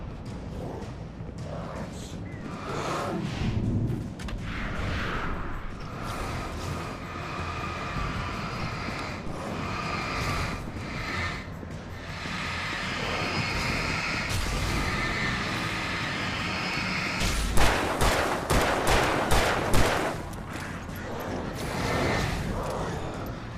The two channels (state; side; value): identical; both; correlation 1.00